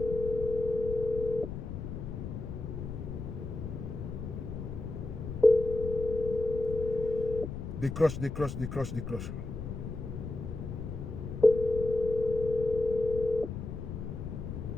Décroche, décroche, décroche, décroche.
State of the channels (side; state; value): left; noise; rumble, 7 dB below the sound